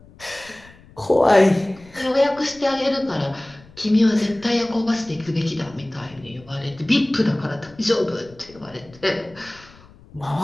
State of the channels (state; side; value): noise; left; rumble, 24 dB below the sound